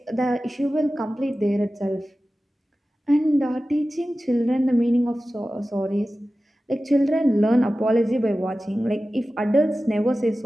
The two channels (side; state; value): both; normal; correlation 0.95